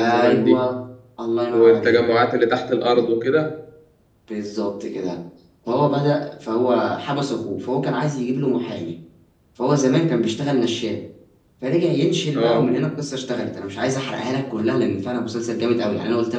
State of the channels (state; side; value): identical; both; correlation 1.00